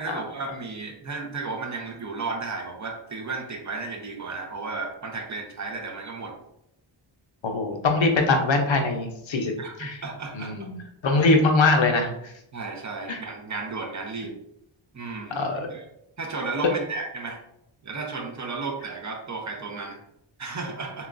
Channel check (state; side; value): normal; both; correlation 0.12